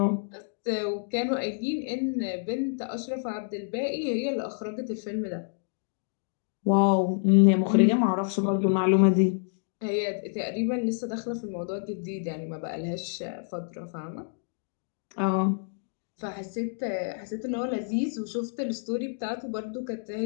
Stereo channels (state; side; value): silent; right; digital silence